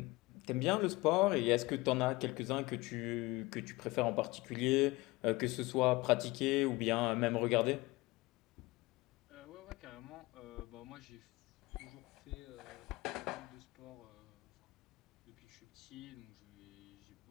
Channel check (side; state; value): right; quieter; 21.7 dB